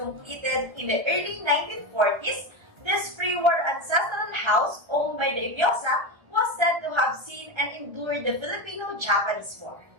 in the early 1940s. This pre-war ancestral house owned by the Eviosa was said to have seen and endured the Filipino-Japanese War.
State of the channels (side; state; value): left; late; 1.3 ms